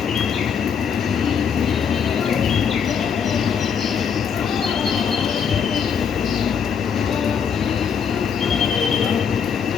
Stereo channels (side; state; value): right; quieter; 7.1 dB